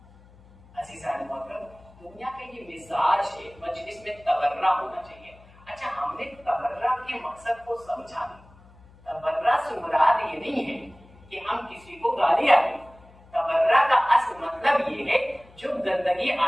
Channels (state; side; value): noise; left; hum, 25 dB below the sound